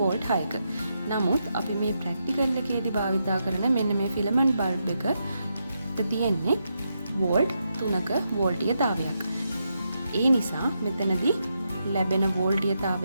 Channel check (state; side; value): inverted; both; correlation -0.83